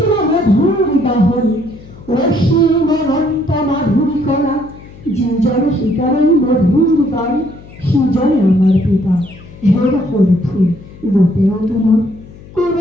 মধুৰ গাহৰি অসীম অনন্ত মাধুৰী কলা যিজনে শিকাৰে মধুৰ গান সিজনে আমাৰ পিতা। হেৰা সৰু ফুল গোটেও তোমাৰ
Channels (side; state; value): left; noise; hum, 20 dB below the sound